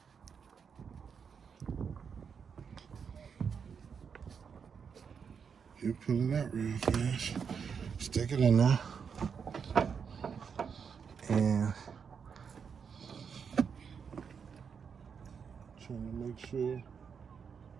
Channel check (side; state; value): left; quieter; 6.5 dB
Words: You pull it out real fast, stick it in there, and trying to make sure